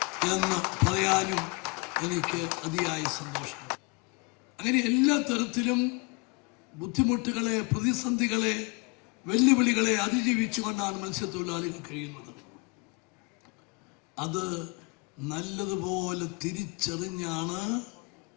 എന്ന് പറയാനും എനിക്ക് അതിയായ സന്തോഷമുണ്ട്. അങ്ങനെ എല്ലാ തരത്തിലും ബുദ്ധിമുട്ടുകളെ, പ്രതിസന്ധികളെ, വെല്ലുവിളികളെ അതിജീവിച്ചുകൊണ്ടാണ് മത്സ്യത്തൊഴിലാളികൾ കഴിയുന്നത്. അത് നല്ലതുപോലെ തിരിച്ചറിഞ്ഞാണ്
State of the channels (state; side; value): quieter; right; 30.0 dB